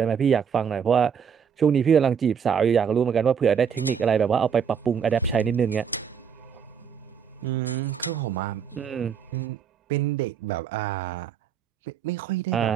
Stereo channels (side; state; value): left; quieter; 7.3 dB